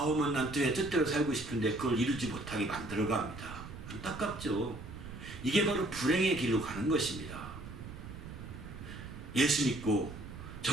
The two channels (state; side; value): noise; right; rumble, 11 dB below the sound